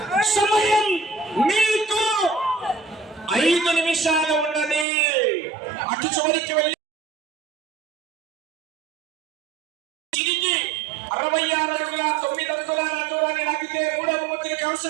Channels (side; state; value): left; drops out; at 4.9 s